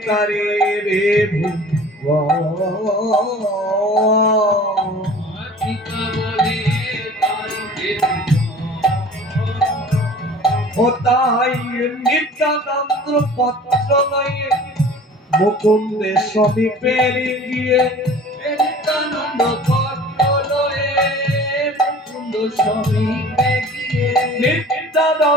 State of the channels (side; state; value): both; normal; correlation 0.44